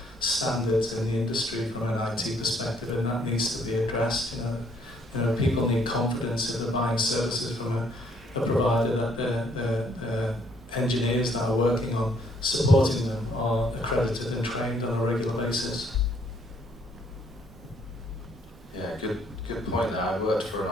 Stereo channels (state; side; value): normal; both; correlation 0.66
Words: standards in the industry from an IT perspective, and that needs to be addressed. People need confidence if they're buying services from a provider that the engineers that are working on supporting them are accredited and trained on a regular basis. Yeah, good point there. I worked for